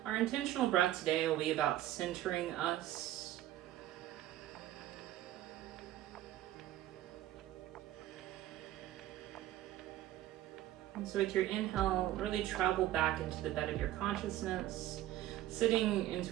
our intentional breath today will be about centering us. And so with your inhale, really travel back into the bed of your consciousness, sitting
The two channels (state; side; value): quieter; left; 13.7 dB